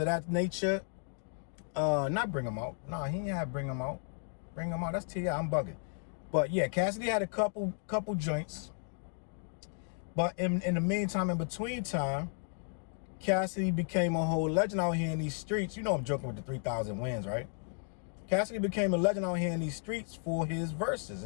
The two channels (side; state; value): right; silent; 55 dB below the other